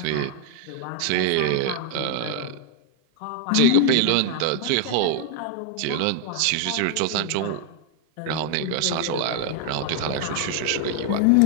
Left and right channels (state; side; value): different; both; correlation 0.00